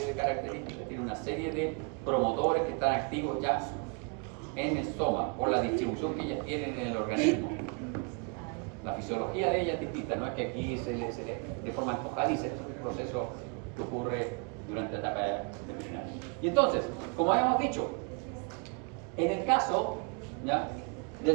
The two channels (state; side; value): quieter; left; 36.0 dB